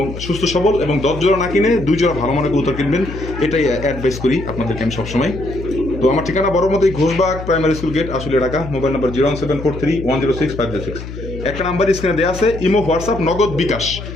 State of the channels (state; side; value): noise; left; hum, 10 dB below the sound